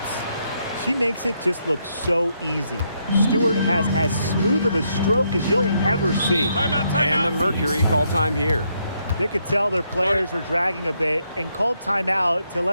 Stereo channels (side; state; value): both; inverted; correlation -0.77